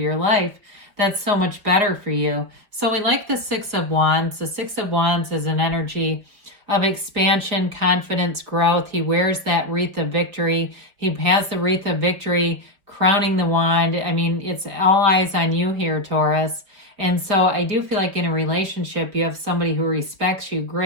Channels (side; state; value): left; late; 5.0 ms